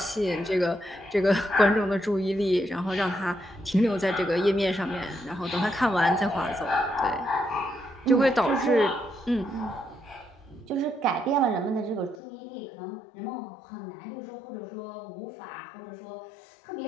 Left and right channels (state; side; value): drops out; right; at 12.2 s